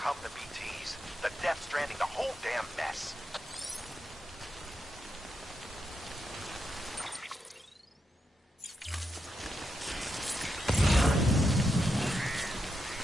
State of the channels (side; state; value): both; normal; correlation 0.84